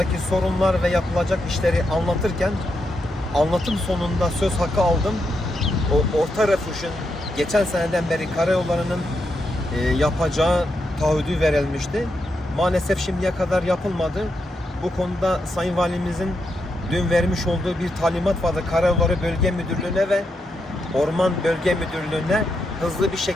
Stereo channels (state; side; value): normal; both; correlation 0.83